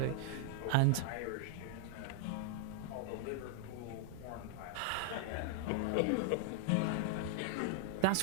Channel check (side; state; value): both; different; correlation 0.00